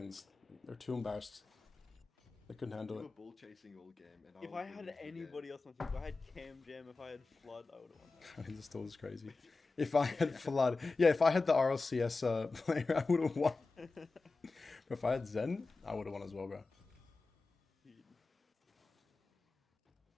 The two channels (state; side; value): quieter; right; 3.8 dB